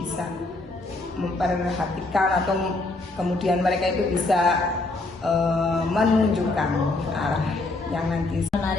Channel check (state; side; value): quieter; right; 3.0 dB